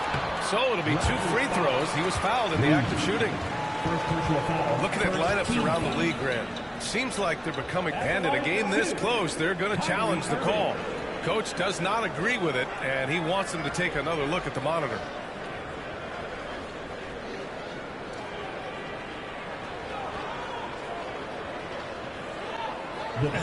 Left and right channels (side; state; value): both; identical; correlation 1.00